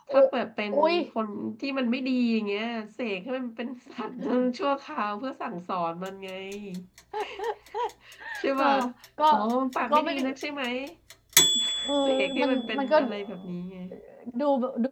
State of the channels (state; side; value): identical; both; correlation 1.00